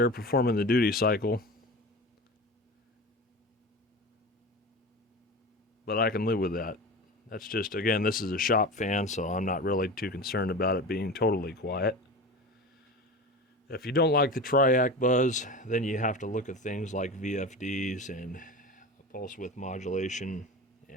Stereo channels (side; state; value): both; normal; correlation 0.31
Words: performing the duty cycle. But I can live with that. That's just, again, this is a shop fan, so I'm not really too concerned about it being totally quiet. If you don't like the Triac buzz, then you have to look at things like VFDs and pulse width modulation,